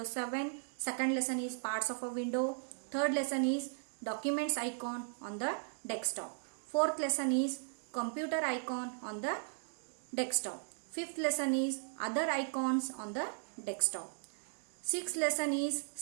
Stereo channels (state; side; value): silent; left; digital silence